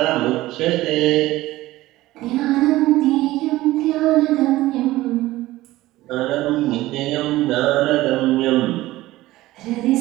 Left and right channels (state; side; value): quieter; left; 17.1 dB